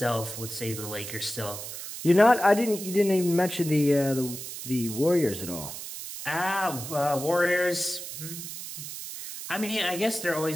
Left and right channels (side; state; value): right; noise; hiss, 9 dB below the sound